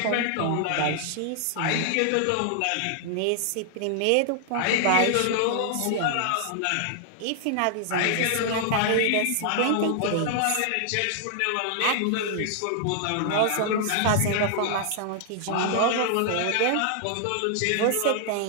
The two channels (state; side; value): different; both; correlation 0.00